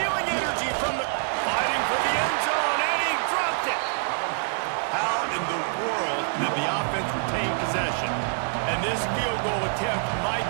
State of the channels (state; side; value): silent; left; 61 dB below the other